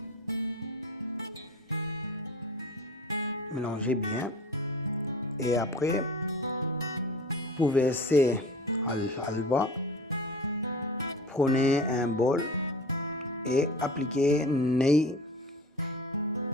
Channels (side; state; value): both; normal; correlation 0.37